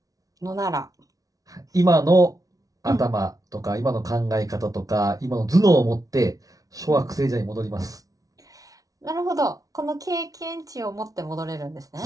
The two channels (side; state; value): left; late; 0.18 ms